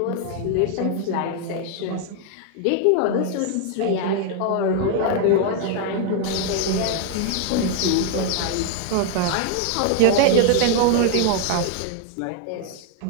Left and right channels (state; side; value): different; both; correlation 0.00